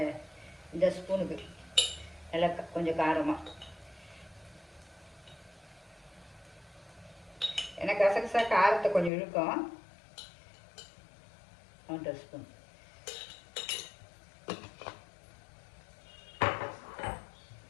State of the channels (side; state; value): right; drops out; at 9.1 s